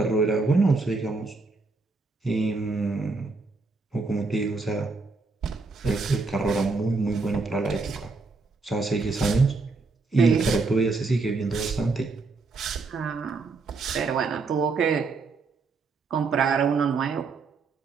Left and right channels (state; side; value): quieter; left; 4.0 dB